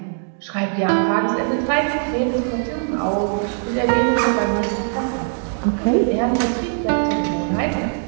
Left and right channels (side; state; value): left; silent; 55 dB below the other